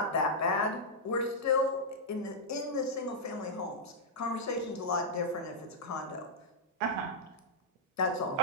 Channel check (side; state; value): both; normal; correlation -0.09